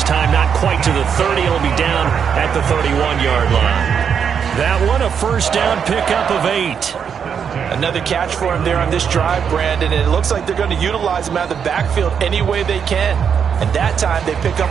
time not quite to the 30. It'll be down at the 31-yard line. That one a first down pickup of 8. Another catch for him there on this drive, Brandon, and it looks like they're going to utilize him out of the backfield any way they can. And that time they pick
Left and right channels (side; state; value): left; quieter; 7.2 dB